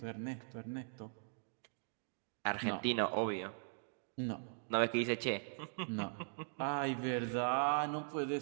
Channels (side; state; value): left; silent; digital silence